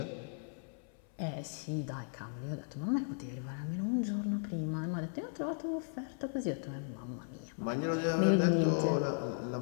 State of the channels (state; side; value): silent; right; 54 dB below the other